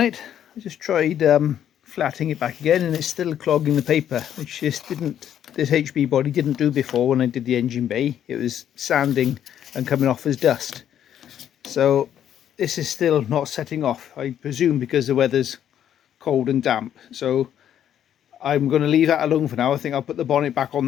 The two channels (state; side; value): quieter; right; 10.1 dB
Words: I just tried flattening it back again, and it's still clogging the paper, which this HB body didn't do before when I did the engine bay. It was sanding and coming off as dust. So this is still not setting off, I presume because the weather's cold and damp. So I'm going to leave that alone for now. I think I'll put the bonnet back